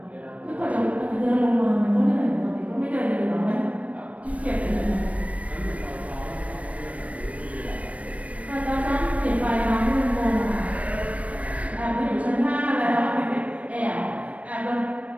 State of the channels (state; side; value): late; left; 0.066 ms